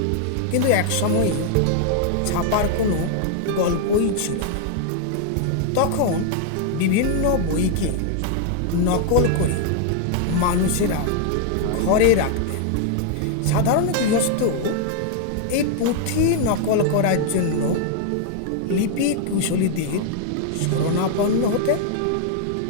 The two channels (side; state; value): both; different; correlation 0.00